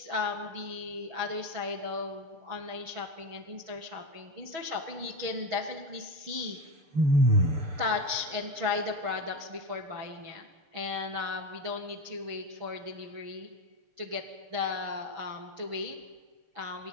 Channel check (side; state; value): left; late; 6.2 ms